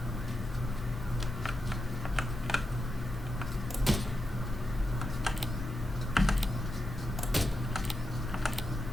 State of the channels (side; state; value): both; normal; correlation 0.87